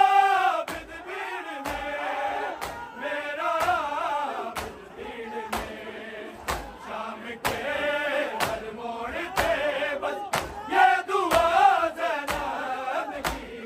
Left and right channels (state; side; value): identical; both; correlation 1.00